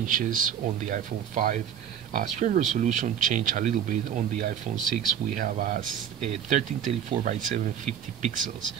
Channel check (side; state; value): left; quieter; 8.9 dB